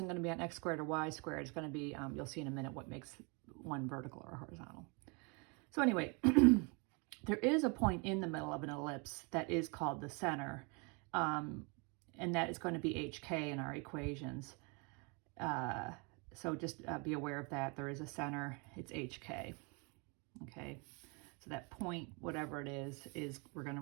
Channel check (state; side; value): quieter; left; 32.1 dB